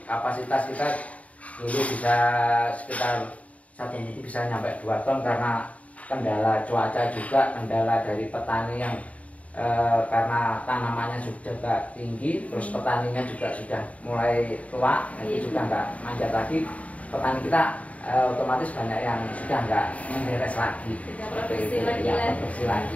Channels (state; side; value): late; right; 0.068 ms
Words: kapasitas kita dulu bisa sekitar 1 minggu bisa nyampe 2 ton karena kendala cuaca juga, kendala dari petani yang karena tanamannya sudah tinggi, terus petaninya juga sudah mulai tua, itu juga nggak manjat lagi. Petani kita otomatis banyak yang sudah nggak menderes lagi, produksi